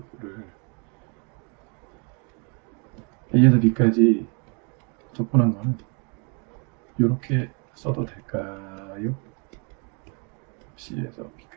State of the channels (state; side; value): quieter; left; 35.3 dB